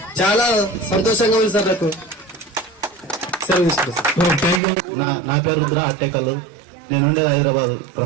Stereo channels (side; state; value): left; drops out; at 4.6 s